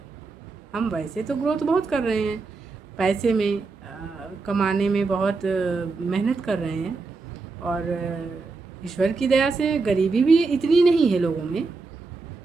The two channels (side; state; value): left; quieter; 4.1 dB